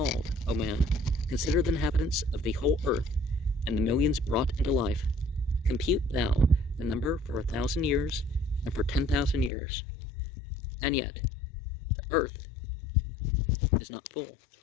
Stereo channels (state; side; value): drops out; right; at 9.5 s